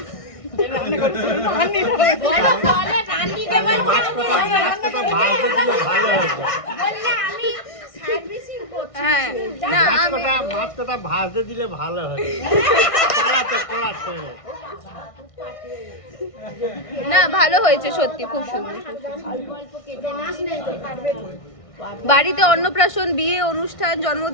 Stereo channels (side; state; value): right; late; 1.6 ms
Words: হ্যাঁ না মাছ কটা ভাজতে দিলে ভালো হয়। না ভালো হয়েছে সত্যি, খুব সুন্দর। বাড়িতে অন্নপ্রাশন, বিয়ে, অনুষ্ঠান,